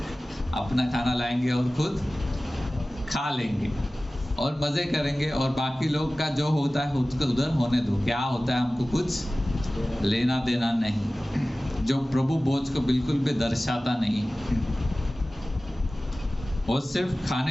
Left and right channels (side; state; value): both; normal; correlation 0.97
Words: अपना खाना लाएंगे और खुद खा लेंगे और मजे करेंगे, और बाकी लोग का जो होता है उसको उधर होने दो, क्या होता है हमको कुछ लेना देना नहीं। जो प्रभु भोज को बिल्कुल भी दर्शाता नहीं, और सिर्फ खाने